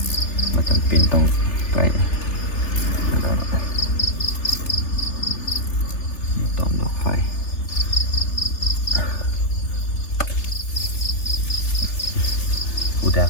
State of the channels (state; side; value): late; right; 3.1 ms